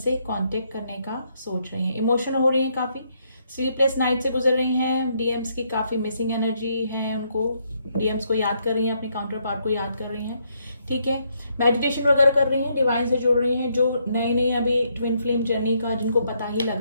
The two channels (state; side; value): inverted; both; correlation -0.74